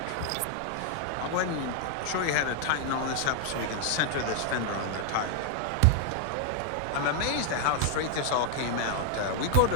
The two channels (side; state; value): both; different; correlation 0.00